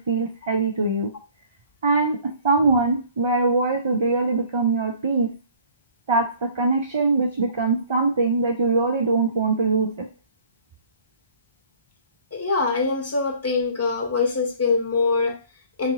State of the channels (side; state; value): both; inverted; correlation -0.52